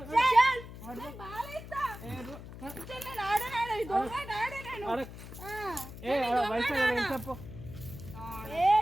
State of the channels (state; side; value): noise; left; hum, 13 dB below the sound